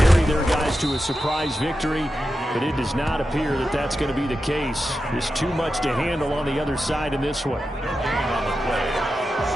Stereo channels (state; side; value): normal; both; correlation 0.90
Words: their guys to a surprise victory, but it does not appear that that's going to be the case. There's too much to handle on the other side in this one. No gain on the play.